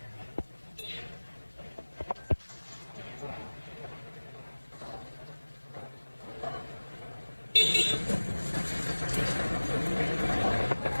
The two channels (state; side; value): inverted; both; correlation -1.00